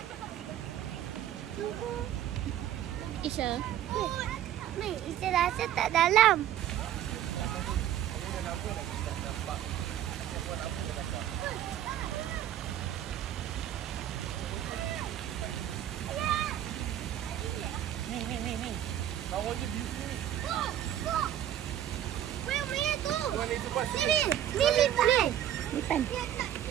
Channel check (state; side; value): quieter; left; 11.4 dB